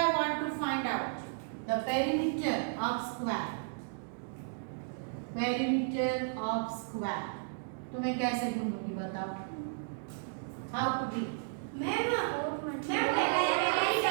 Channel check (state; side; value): silent; left; digital silence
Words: want to find out the perimeter of square, तो मैं कैसे ढूंढूंगी बताओ? How to do?